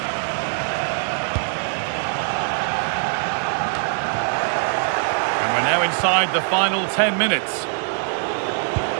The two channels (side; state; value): left; silent; 64 dB below the other